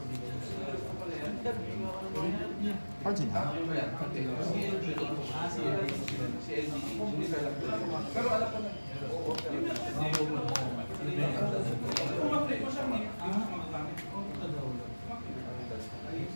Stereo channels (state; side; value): inverted; both; correlation -1.00